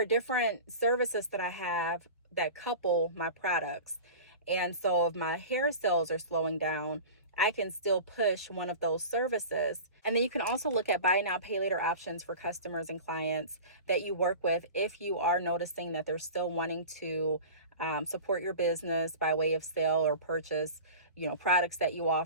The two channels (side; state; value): both; inverted; correlation -0.36